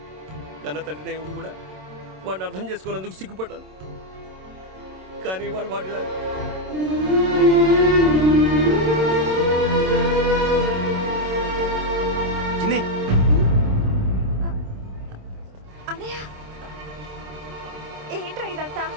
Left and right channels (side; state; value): left; late; 27 ms